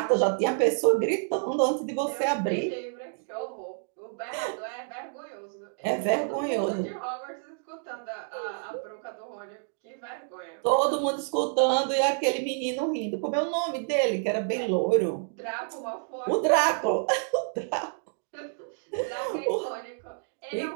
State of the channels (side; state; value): left; silent; digital silence